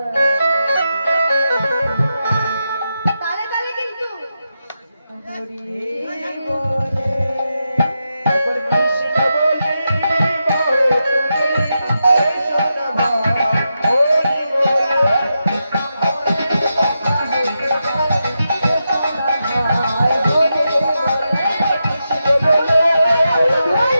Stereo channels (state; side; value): inverted; both; correlation -0.87